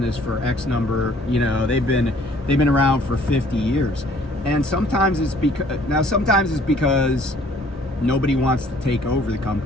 for X number, they've been around for 50 years. And sometimes it's because nobody wants to take over the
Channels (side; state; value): both; normal; correlation 0.58